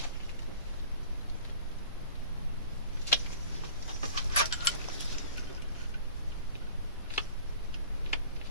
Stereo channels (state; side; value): inverted; both; correlation -0.45